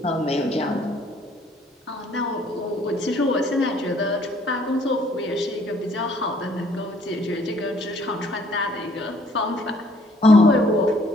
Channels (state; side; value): normal; both; correlation 0.62